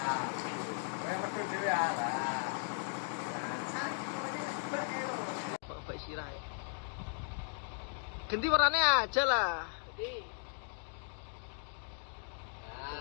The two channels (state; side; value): silent; right; 53 dB below the other